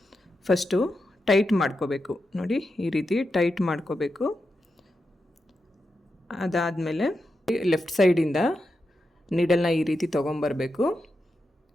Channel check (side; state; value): both; normal; correlation 0.88